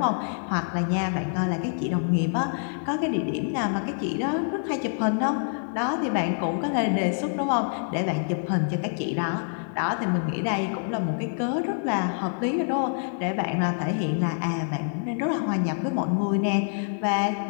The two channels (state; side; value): silent; right; digital silence